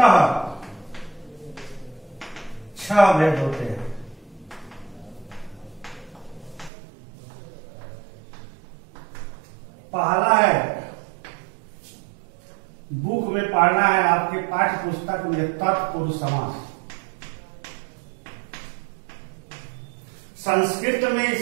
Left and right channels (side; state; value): left; drops out; at 6.7 s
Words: 6 भेद होते हैं। पहला है, बुक में पढ़ना है आपके पाठ्य पुस्तक में, तत्पुरुष समास। संस्कृत में